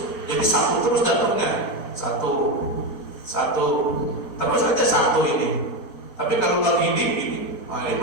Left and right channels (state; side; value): late; right; 4.3 ms